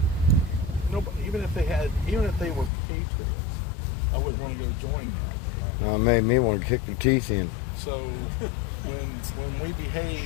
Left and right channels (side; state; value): right; drops out; at 2.7 s